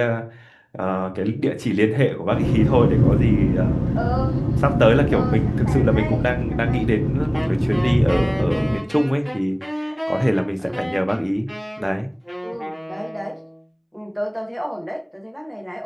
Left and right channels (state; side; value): identical; both; correlation 1.00